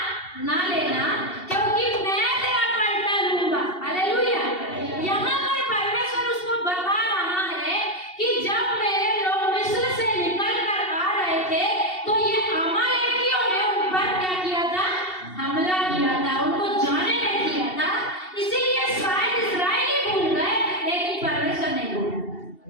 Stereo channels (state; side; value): late; right; 2.7 ms